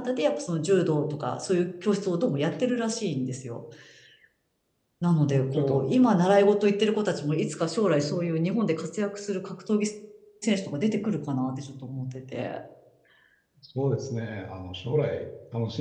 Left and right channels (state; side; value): identical; both; correlation 1.00